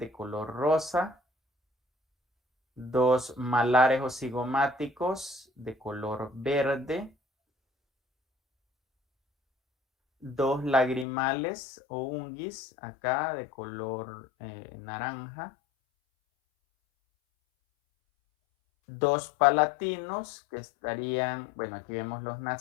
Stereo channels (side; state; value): right; drops out; at 11.1 s